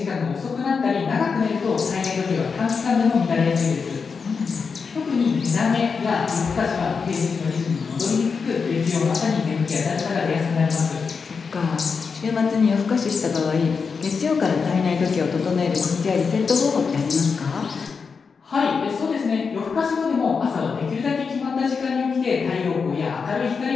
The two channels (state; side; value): quieter; right; 5.4 dB